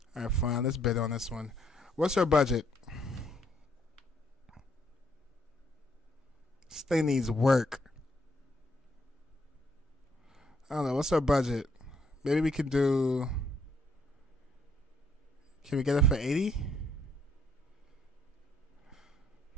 Alright, fine. Let's bid on this one. What's our budget? This thing needs work. I don't know. What's our budget? Maybe we can do... Can we get it for 80?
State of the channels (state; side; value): normal; both; correlation 0.70